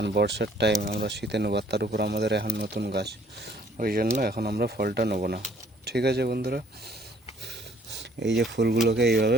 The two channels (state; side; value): normal; both; correlation 0.60